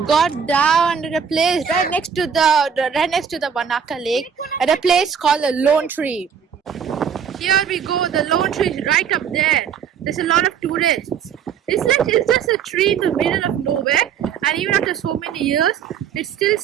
got down at a place right next to the Wanaka Lake at a place called the Lone Tree. Here we go, the lone tree is right up there. There's a lot of tourists. It's just a tree in the middle of nowhere, and even after so many years, it's still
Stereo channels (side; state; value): left; quieter; 7.5 dB